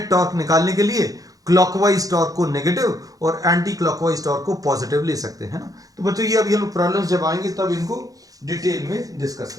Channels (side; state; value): left; late; 0.17 ms